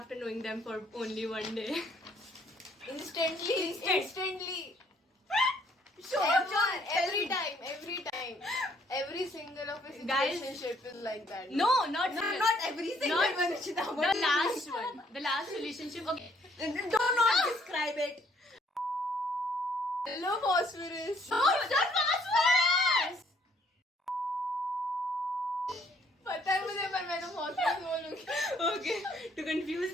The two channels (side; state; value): both; normal; correlation 0.65